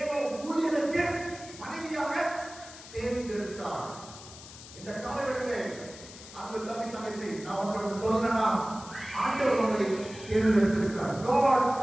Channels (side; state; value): left; noise; hiss, 16 dB below the sound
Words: ஊழியனுக்கு மனைவியாக தேர்ந்தெடுத்தார். இந்த காலவெளியிலே அன்பு தம்பி தங்கச்சி, நான் உங்களுக்கு சொல்லணும்னா ஆண்டவர் உங்களை தேர்ந்தெடுத்திருக்கிறார். God